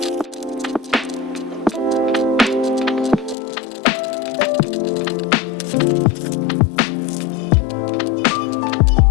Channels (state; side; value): drops out; right; at 3.4 s